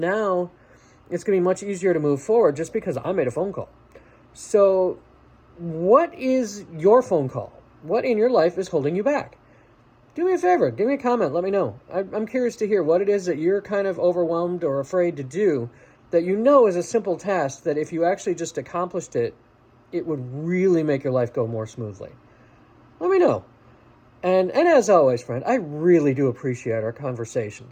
it's going to be much easier to move forward just because I made a phone call. So what is your phone call? What in your life is holding you back? Do me a favor. Give me a comment. Let me know. I'm curious to hear what it is that you're kind of overwhelmed or afraid to do that you know is a simple task that if you actually just accomplished it, it would really make your life go more smoothly. Let me know. And as always, friend, I really do appreciate our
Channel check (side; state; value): both; identical; correlation 1.00